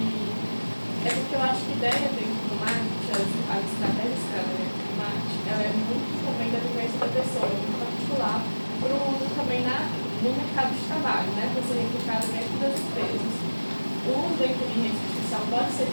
porque eu acho que ideia dentro do marketing, a estratégia dentro do marketing, ela é muito também da vivência da pessoa, muito particular, para o uso também no mercado de trabalho, né, para ser replicado dentro das empresas. O uso da inteligência artificial pode ser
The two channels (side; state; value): both; inverted; correlation -1.00